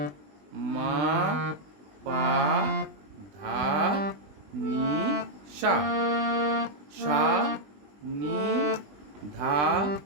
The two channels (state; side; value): late; left; 20 ms